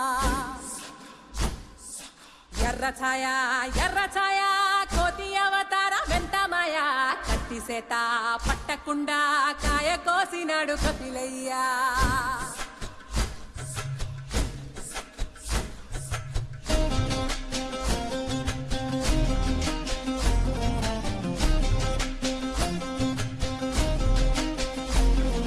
ఎర్ర ఛాయ కోతి అవతార వెంటమాయ కత్తి సేత పట్టకుండా కాయ కోసినాడు కపిలయ్యా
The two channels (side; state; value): both; identical; correlation 1.00